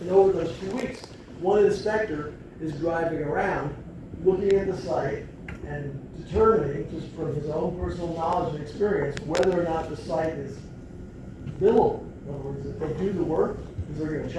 And over those few weeks, one inspector is driving around, looking at the site and determining, just from his own personal knowledge and experience, whether or not the site is billable. In other words, if they do the work, because they're gonna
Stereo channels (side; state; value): both; identical; correlation 1.00